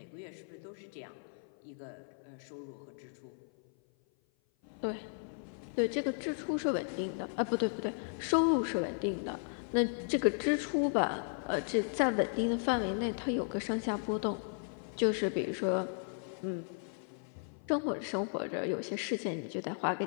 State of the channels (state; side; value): silent; right; 54 dB below the other